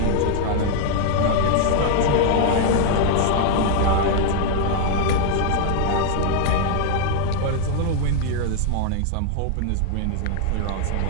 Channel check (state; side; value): different; both; correlation 0.00